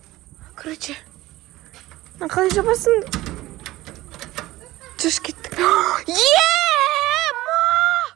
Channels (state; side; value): quieter; left; 17.2 dB